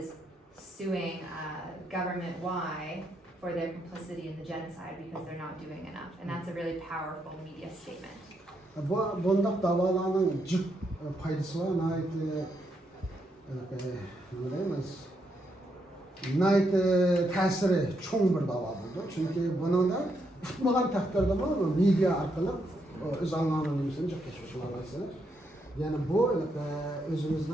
suing government Y for their complicity in the genocide because they're not doing enough. And that's a really powerful media statement. Bundak davalarının cık faydası var. Nait tesiri çoğun bir dava buldu. Çünkü bunun da tutmagan takdirde media arkalı öz anlamını cıklaşmış olasını. Yani bu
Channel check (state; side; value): normal; both; correlation 0.78